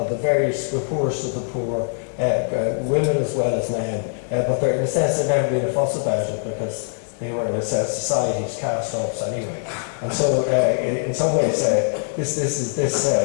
the various poorest of the poor, women as well as men. But in a sense, there'd never been a fuss about it because they were, in a sense, society's cast-offs anyway. And so, in some ways,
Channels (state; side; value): silent; right; digital silence